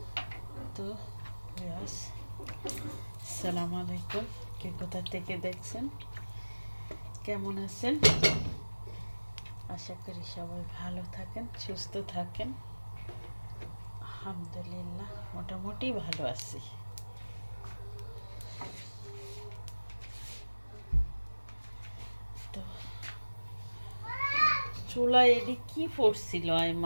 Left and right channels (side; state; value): both; inverted; correlation -1.00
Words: তো আসসালামু আলাইকুম, কে কোথা থেকে দেখছেন, কেমন আছেন? আশা করি সবাই ভালো থাকেন, সুস্থ থাকেন। আলহামদুলিল্লাহ মোটামুটি ভালো আছি। তো চুলায় এটি কি পড়ছিল